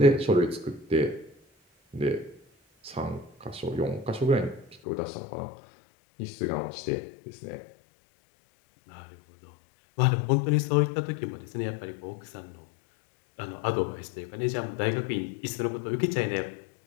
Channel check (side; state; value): right; drops out; at 4.8 s